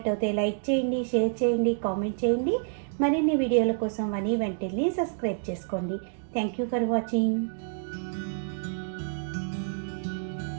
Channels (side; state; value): left; silent; digital silence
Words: లైక్ చేయండి, షేర్ చేయండి, కామెంట్ చేయండి. మరిన్ని వీడియోల కోసం వని వంటిల్ని సబ్స్క్రైబ్ చేసుకోండి. Thank you for watching.